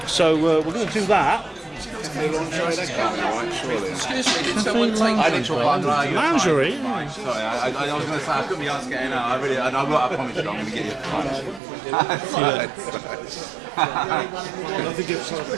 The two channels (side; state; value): left; drops out; at 11.6 s